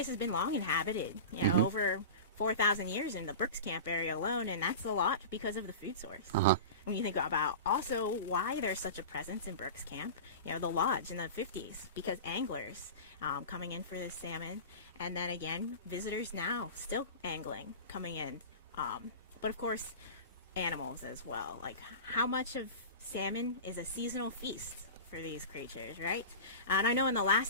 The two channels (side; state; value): both; inverted; correlation -0.31